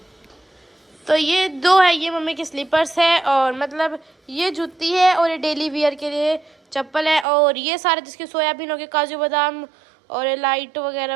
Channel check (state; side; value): drops out; left; at 7.2 s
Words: तो ये 2 है, ये मम्मी की स्लीपर्स है, और मतलब ये जूती है, और ये डेली वियर के लिए चप्पल है, और ये सारे जिसके सोयाबीन हो गए, काजू बादाम और ये लाइट